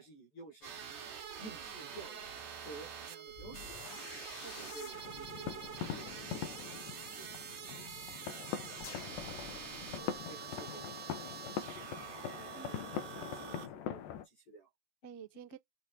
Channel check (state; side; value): late; right; 14 ms